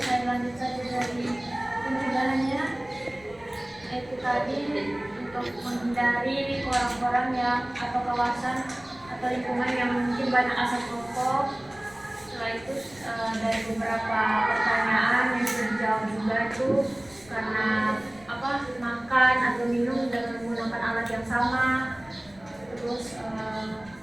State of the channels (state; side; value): noise; left; rumble, 26 dB below the sound